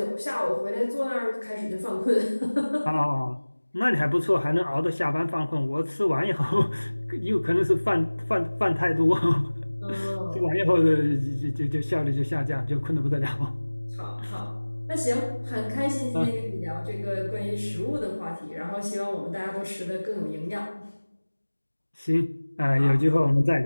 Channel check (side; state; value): both; inverted; correlation -1.00